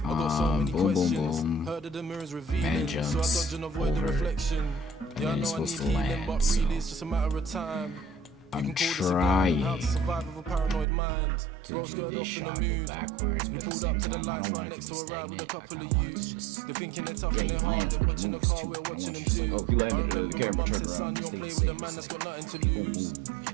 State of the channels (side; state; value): left; drops out; at 10.9 s